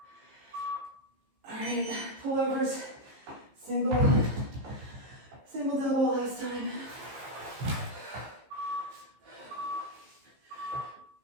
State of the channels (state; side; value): late; left; 15 ms